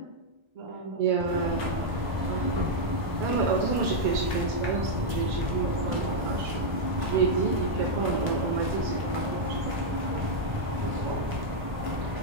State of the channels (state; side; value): late; left; 1.3 ms